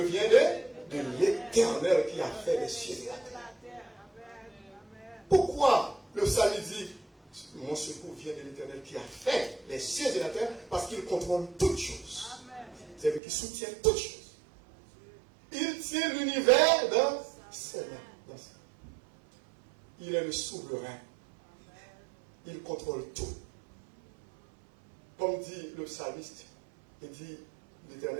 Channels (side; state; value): left; drops out; at 13.2 s